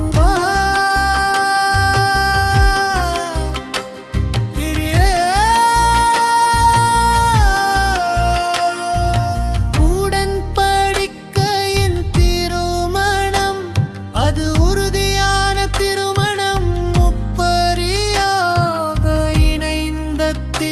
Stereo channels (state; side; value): identical; both; correlation 1.00